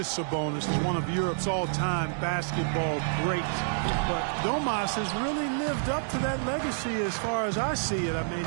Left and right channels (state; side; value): silent; left; digital silence